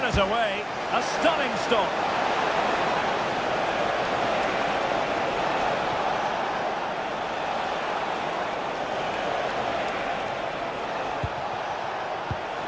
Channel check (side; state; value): both; identical; correlation 1.00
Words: it away. A stunning stop.